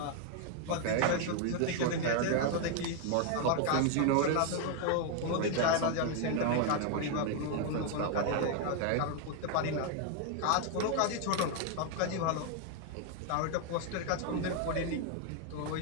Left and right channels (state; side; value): different; both; correlation 0.00